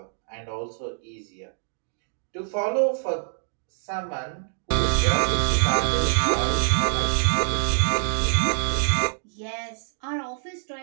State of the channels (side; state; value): left; silent; digital silence